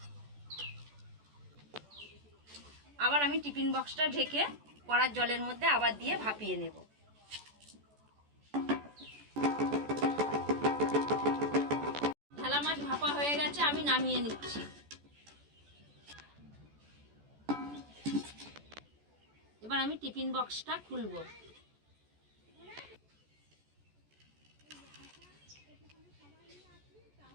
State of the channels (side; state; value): left; late; 14 ms